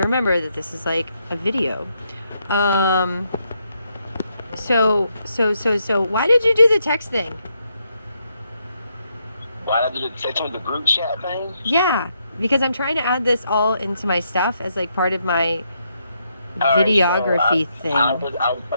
remember that this is like a video. So why did you do the text thing? Why did I do the text with the group chat thing? Yeah, because I'm trying to add this all into my stuff as like part of my All right, so videography thing. I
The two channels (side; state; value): both; inverted; correlation -0.78